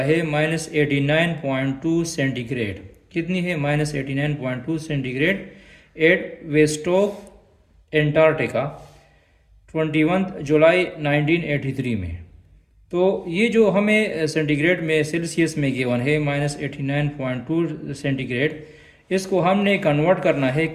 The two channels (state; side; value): identical; both; correlation 1.00